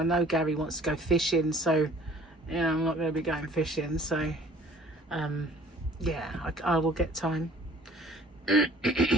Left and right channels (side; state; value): both; normal; correlation 0.53